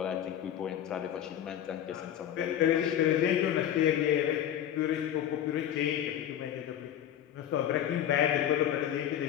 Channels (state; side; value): quieter; right; 10.5 dB